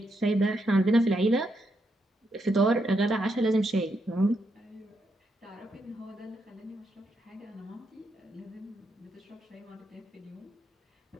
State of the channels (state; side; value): normal; both; correlation 0.80